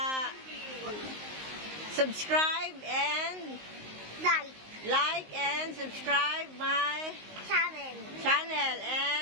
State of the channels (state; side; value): late; left; 19 ms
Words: Subscribe and Like and subscribe my channel.